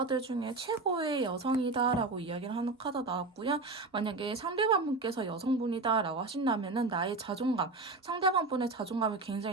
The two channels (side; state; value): left; quieter; 3.5 dB